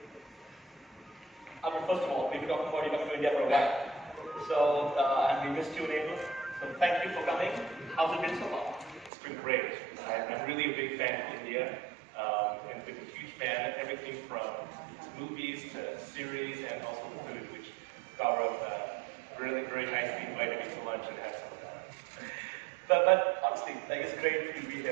Albert, first of all, we've been talking about you coming to India for a while. So, and we missed you in April. So thank you for coming. How's it been so far? It's been great. I'm really a big fan of India, and been a huge fan of everything from movies to series and also the food, which Gaurav really very nicely invited me to lunch and had some of that. But honestly, it's great for you to be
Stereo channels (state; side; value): drops out; left; at 9.1 s